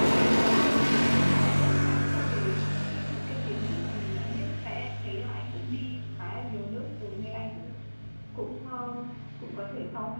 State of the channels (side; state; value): both; inverted; correlation -1.00